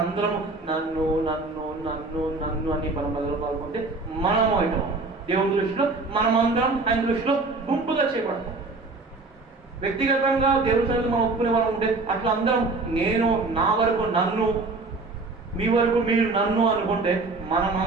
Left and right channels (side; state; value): left; quieter; 3.5 dB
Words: అందరం నన్ను నన్ను నన్ను నన్ను అని మనం మొదలు పాల్గొంటే మనము అవుతాం. దేవుని దృష్టిలో మనమందరం ఆయన దృష్టిలో గుంపుగా చేపడతాం. వ్యక్తిగతంగా దేవుని సన్నిధిలో మనం ఒప్పుకునే వాళ్ళు ఉంటే అట్లా అందరం నేను, నా వరకు నన్ను, మీ వరకు మీరు నన్ను అనుకుంటే